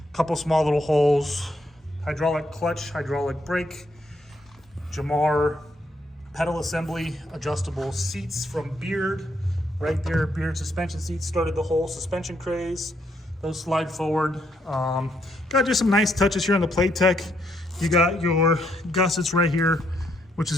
couple small little holes. Hydraulic clutch, hydraulic brake, Jamar pedal assembly, adjustable seats from Beard. Right there, Beard suspension seats started the whole suspension craze. Those slide forward. Got just some nice touches here on the playtech. You got your gussets right here, which is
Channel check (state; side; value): normal; both; correlation 0.74